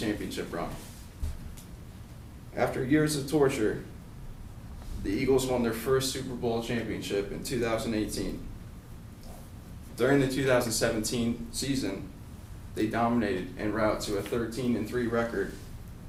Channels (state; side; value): identical; both; correlation 1.00